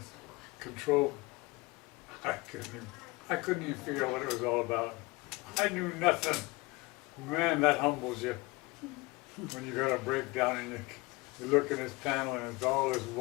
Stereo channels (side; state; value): right; quieter; 24.0 dB